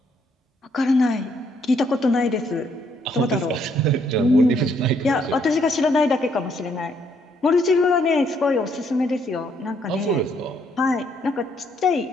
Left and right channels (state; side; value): normal; both; correlation 0.70